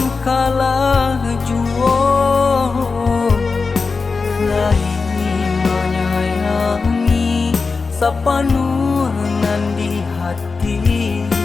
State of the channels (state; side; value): quieter; right; 4.5 dB